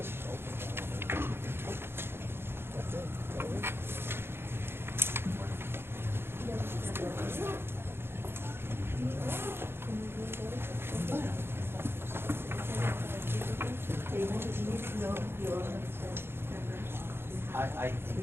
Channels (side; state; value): left; late; 0.11 ms